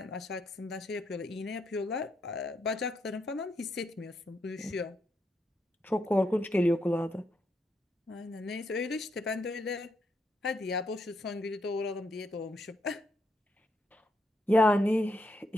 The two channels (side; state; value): both; normal; correlation 0.79